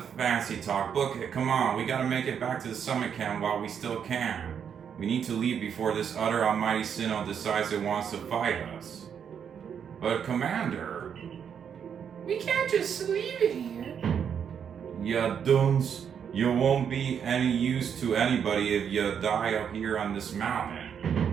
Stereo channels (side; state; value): left; quieter; 7.8 dB